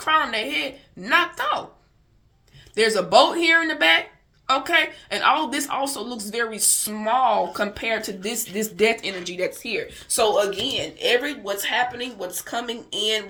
on their head knocked off. There's a boat here in the back. Okay, and all this also looks very small compared to this death energy that's here. So again, what's happening, what's coming in,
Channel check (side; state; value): both; identical; correlation 1.00